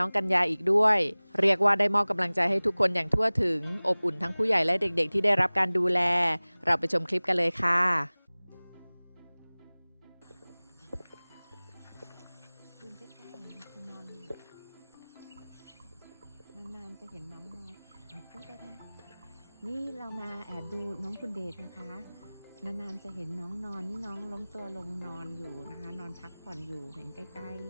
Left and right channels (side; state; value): both; inverted; correlation -1.00